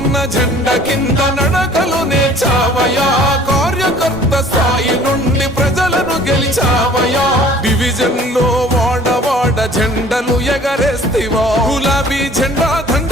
జెండ కింద నడకలు నేర్చావయా, కార్యకర్త స్థాయి నుండి ప్రజలను గెలిచావయా, డివిజన్ లో వాడవాడ జెండలు ఎగరేస్తివో, గులాబీ జెండా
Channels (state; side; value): normal; both; correlation 0.51